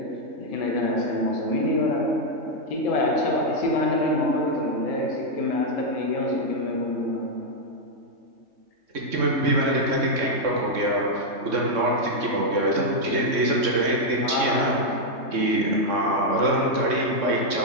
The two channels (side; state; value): left; late; 3.6 ms